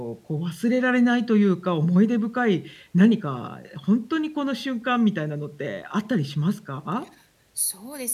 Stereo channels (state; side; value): identical; both; correlation 1.00